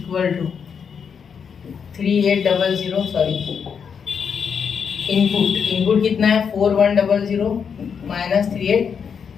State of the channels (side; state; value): right; quieter; 6.7 dB